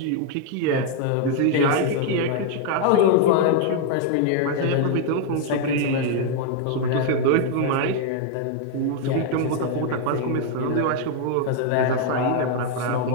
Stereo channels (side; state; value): both; different; correlation 0.00